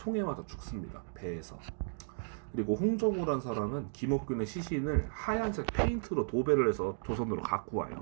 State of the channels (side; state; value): left; silent; digital silence